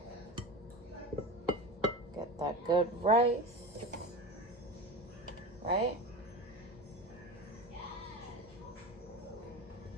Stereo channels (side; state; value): both; normal; correlation 0.28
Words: Get that good rice, right?